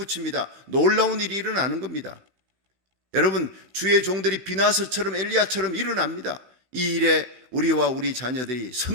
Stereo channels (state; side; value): late; left; 15 ms